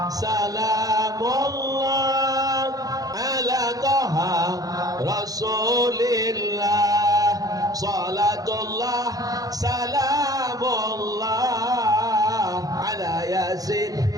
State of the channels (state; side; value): late; left; 0.18 ms